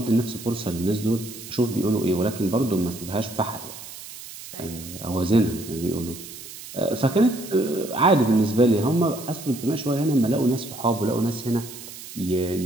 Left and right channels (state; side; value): noise; right; hiss, 14 dB below the sound